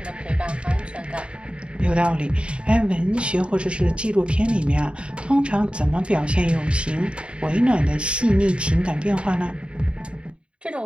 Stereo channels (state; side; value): late; left; 0.056 ms